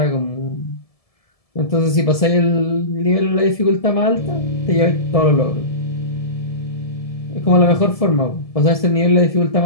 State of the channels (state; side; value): late; right; 1.7 ms